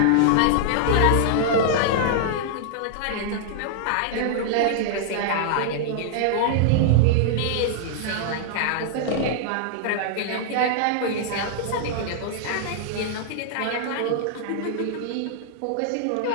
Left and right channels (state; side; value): different; both; correlation -0.01